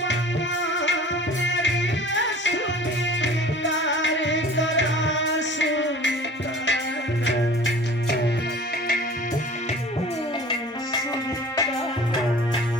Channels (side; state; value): both; normal; correlation 0.44